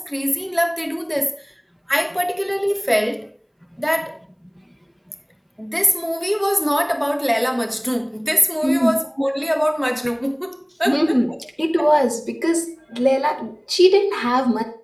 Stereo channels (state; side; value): identical; both; correlation 1.00